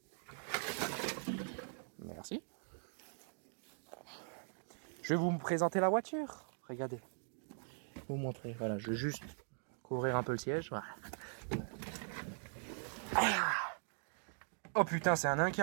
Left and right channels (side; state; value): left; silent; 51 dB below the other